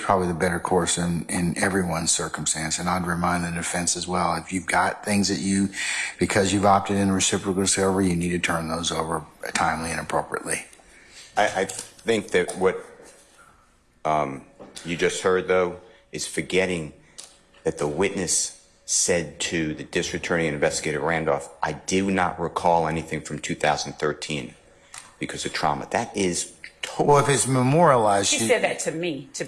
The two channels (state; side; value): identical; both; correlation 1.00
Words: the better course in everyone's circumstance. And I'd remind the defense as well, if you've got things that because you've opted in reciprocal discovery, you need to turn those over timely and appropriately. I think that what you just heard, though, is forgetting that the witness said to the district attorney and investigator Randolph, I do not recall anything from 2013 because of trauma. That is totally... Well, if it's memorialized... She said that to me, to